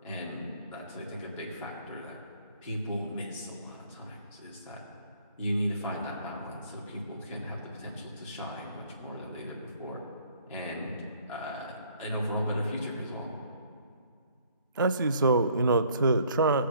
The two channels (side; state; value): both; inverted; correlation -0.60